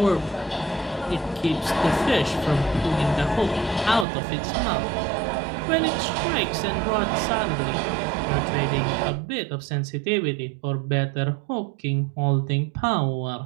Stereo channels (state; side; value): drops out; left; at 4.0 s